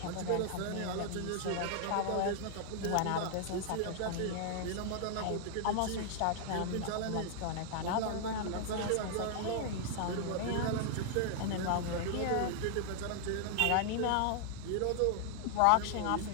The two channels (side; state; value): both; different; correlation 0.00